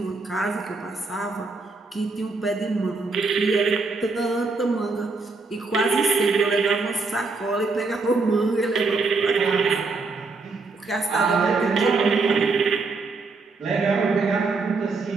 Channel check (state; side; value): quieter; left; 3.9 dB